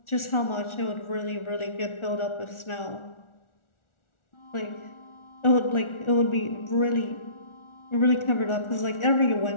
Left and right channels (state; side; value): late; right; 1.4 ms